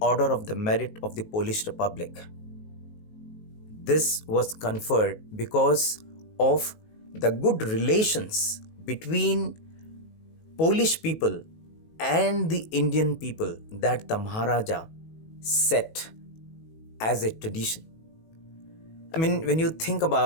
of the Merit of the Polish Republic. This was conferred because of the good relations between Polish people and the Indian people that the Maharaja set as a tradition. I mean, when you think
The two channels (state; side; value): late; right; 19 ms